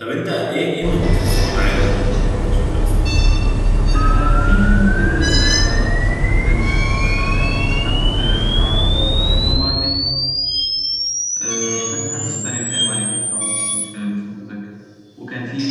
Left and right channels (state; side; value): identical; both; correlation 1.00